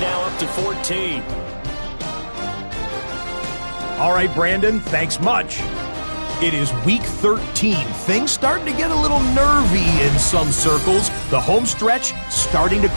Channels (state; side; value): inverted; both; correlation -1.00